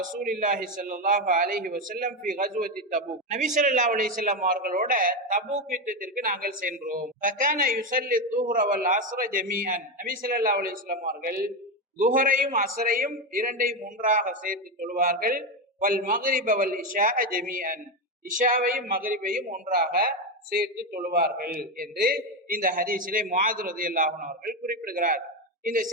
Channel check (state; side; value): normal; both; correlation 0.11